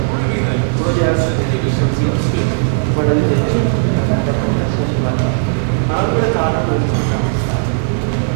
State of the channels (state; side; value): silent; left; digital silence